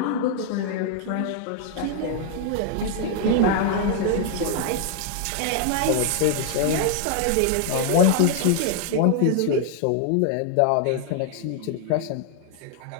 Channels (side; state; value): both; different; correlation 0.00